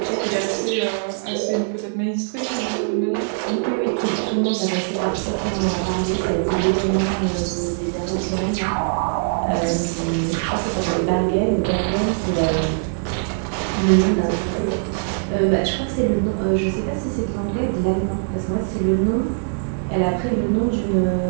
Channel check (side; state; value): left; silent; digital silence